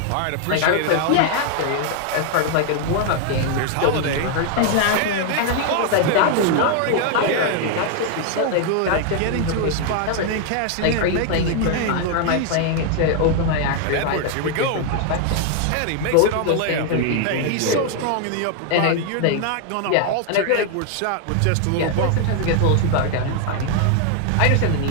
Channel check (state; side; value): different; both; correlation 0.00